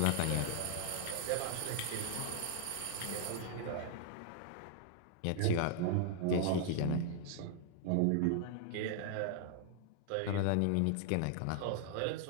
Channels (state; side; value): different; both; correlation 0.00